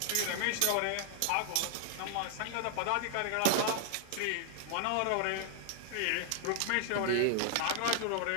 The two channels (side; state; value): both; different; correlation 0.00